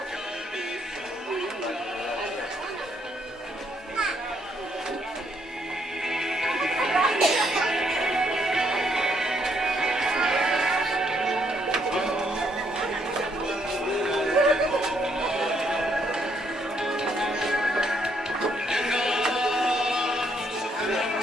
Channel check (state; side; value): normal; both; correlation 0.73